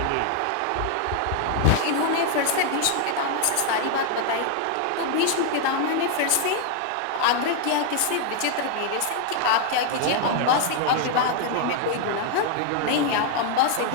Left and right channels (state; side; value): different; both; correlation 0.00